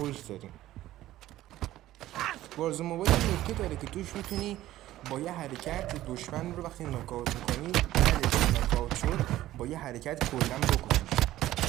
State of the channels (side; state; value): left; quieter; 14.7 dB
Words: داریم. وارزون موبایل نکته داره که توش میتونی با یه حرکت دشمن رو وقتی ناکاوت میکنی، بعدش ناکاوت شد با یه حرکت کلا بکشیش.